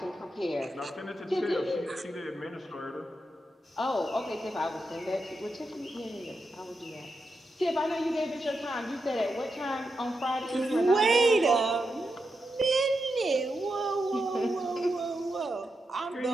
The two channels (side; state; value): both; normal; correlation 0.87